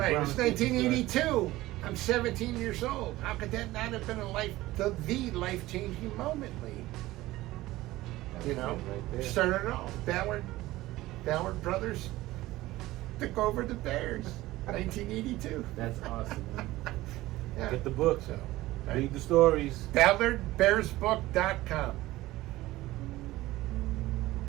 it Brown was chicken story. 1982. I'm 17 years old. How could that not have been the life-changing moment, Lee? That's You it know, right there. started it all. Ballard brothers took over the Bears, 1982. That's awesome, man. Yeah. Get the book. So, Read the stories. BallardBearsBook.com.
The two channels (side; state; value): left; quieter; 17.5 dB